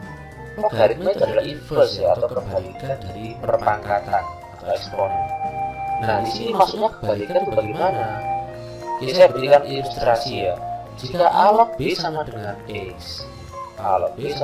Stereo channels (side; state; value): both; identical; correlation 1.00